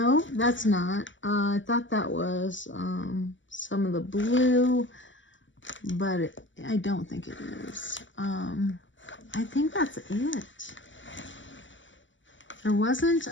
that's not. I thought that was some of the blue, but I don't think it is. I think that's it. There wasn't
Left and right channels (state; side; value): late; right; 0.55 ms